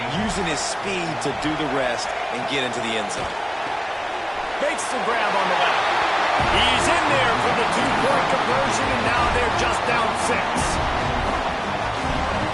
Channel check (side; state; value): both; identical; correlation 1.00